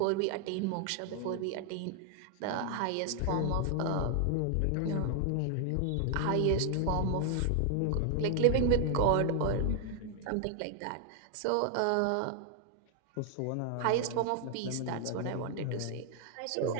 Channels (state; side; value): different; both; correlation 0.00